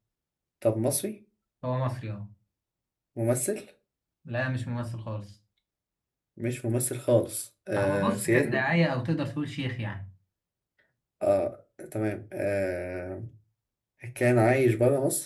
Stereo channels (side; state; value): both; identical; correlation 1.00